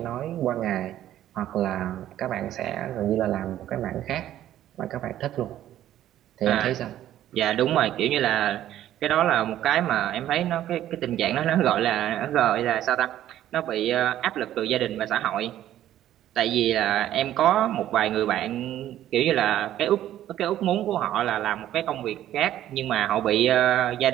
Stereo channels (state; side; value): quieter; left; 12.5 dB